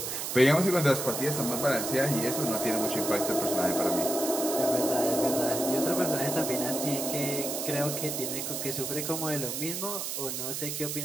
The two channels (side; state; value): right; noise; hiss, 4 dB below the sound